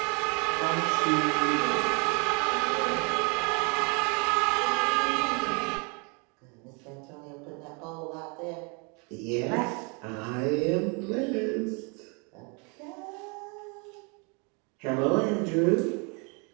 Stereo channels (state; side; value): quieter; left; 33.3 dB